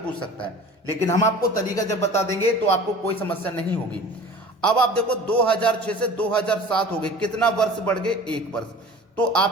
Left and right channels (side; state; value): both; normal; correlation 0.41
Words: सकता है। लेकिन हम आपको तरीका जब बता देंगे तो आपको कोई समस्या नहीं होगी। अब आप देखो, 2006 से 2007 हो गए, कितना वर्ष बढ़ गए? 1 वर्ष। तो